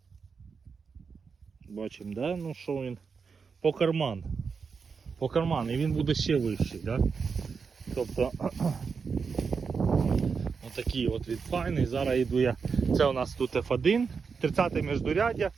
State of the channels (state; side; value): quieter; left; 5.5 dB